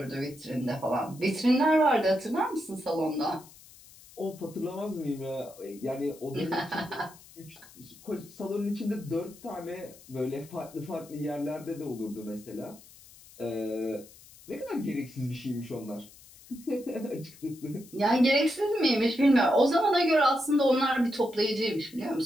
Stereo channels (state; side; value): noise; left; hiss, 22 dB below the sound